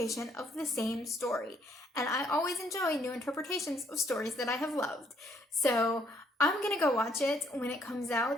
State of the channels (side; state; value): both; normal; correlation 0.68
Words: of the same story. And I always enjoy new interpretations of stories that I have loved. So I'm gonna go watch it when it comes